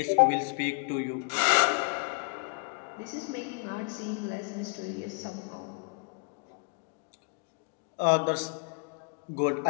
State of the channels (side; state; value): right; quieter; 37.1 dB